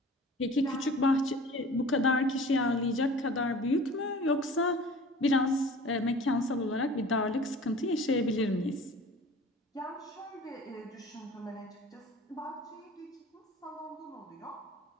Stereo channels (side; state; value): both; normal; correlation 0.43